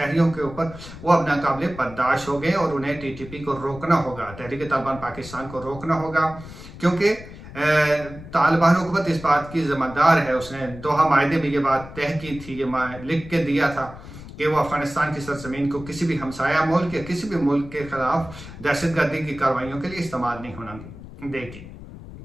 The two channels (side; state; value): left; noise; rumble, 15 dB below the sound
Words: के ऊपर, वो अब नाकाबिले बर्दाश्त हो गए और उन्हें टीटीपी को रोकना होगा, तहरीक तालिबान पाकिस्तान को रोकना होगा। क्योंकि तालिबान हुकूमत इस बात की ज़िम्मेदार है, उसने दोहा मायदे में ये बात तय की थी, ये लिख के दिया था कि वो अफगानिस्तान की सरजमीन को किसी भी हमसाया मुल्क या किसी भी मुल्क के खिलाफ दहशतगर्दी की कार्रवाइयों के लिए इस्तेमाल नहीं होना देगी।